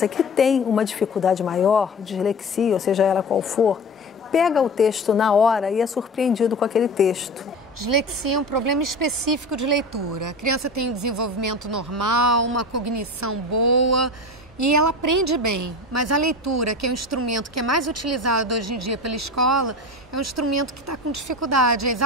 que tem uma dificuldade maior, dislexia, ou seja ela qual for, pega o texto na hora e é surpreendido com aquele texto. Dislexia é um problema específico de leitura. A criança tem um desenvolvimento normal, uma cognição boa e ela aprende bem. Mas a leitura, que é um instrumento que é mais utilizado hoje em dia pela escola, é um instrumento que está com dificuldade. É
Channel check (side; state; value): both; normal; correlation 0.31